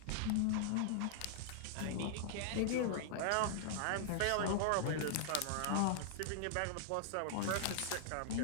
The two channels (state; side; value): different; both; correlation -0.01